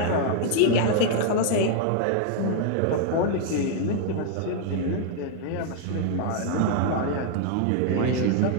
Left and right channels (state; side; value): different; both; correlation 0.00